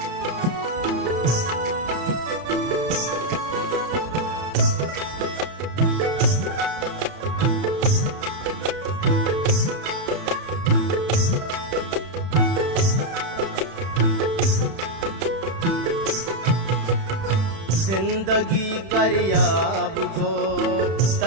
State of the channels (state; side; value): late; left; 31 ms